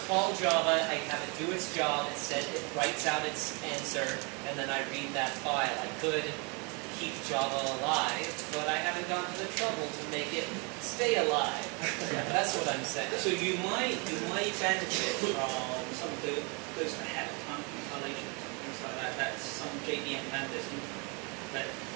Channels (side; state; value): left; quieter; 32.4 dB